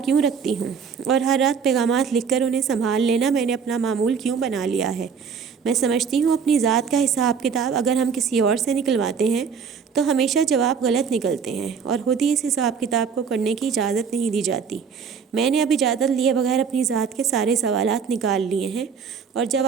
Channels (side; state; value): left; quieter; 6.3 dB